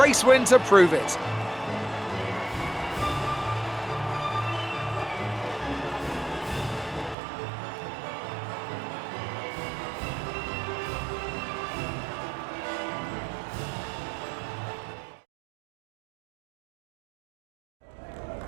race win to prove it.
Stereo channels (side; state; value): left; drops out; at 7.2 s